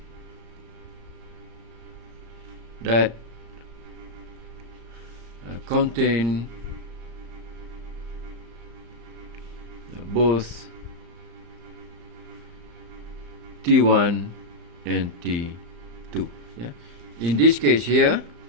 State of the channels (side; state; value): left; late; 35 ms